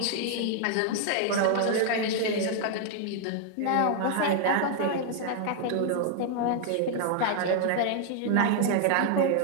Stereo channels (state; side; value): different; both; correlation 0.00